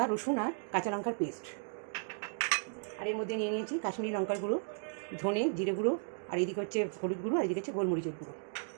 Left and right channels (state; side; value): silent; left; digital silence